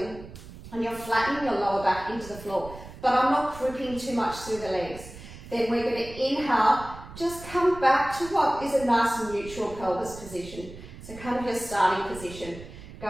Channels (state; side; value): noise; right; rumble, 15 dB below the sound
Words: and you're flattening your lower back into the floor, but I'm not gripping too much through the legs. Then we're going to inhale, just come back to what is a nice neutral pelvis position. So kind of your starting position.